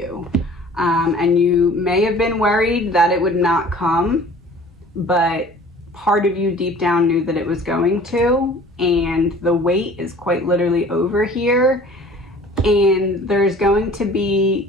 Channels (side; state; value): both; normal; correlation 0.48